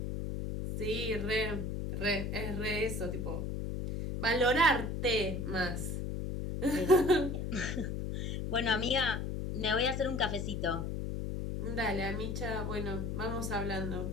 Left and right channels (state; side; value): noise; left; hum, 3 dB below the sound